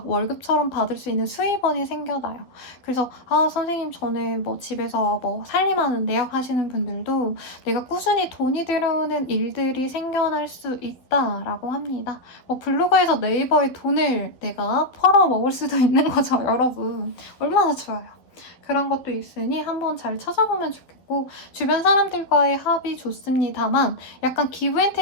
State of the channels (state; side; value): late; right; 12 ms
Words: 월급처럼 받을 수 있는 수입원이 생겨나요. 그래서 선생님 저는 뭐 집에서 뭐 살림하는데요 하시는 분들도 내가 꾸준히 돈이 들어오는 일들이 생겨날 수 있다라고 합니다. 뭐 블로그에서 네이버에 돈을 내가 벌어 먹을 수도 있는 거죠, 여러분. 얼마나 좋아요. 그런 것도 있으니 한번 잘 찾아보면 좋겠고, 주변 사람들과의 합이 좋습니다만 약간 기브 앤